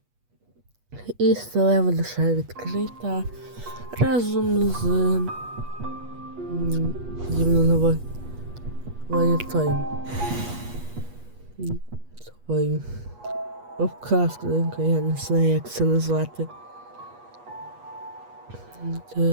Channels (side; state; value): left; late; 8.3 ms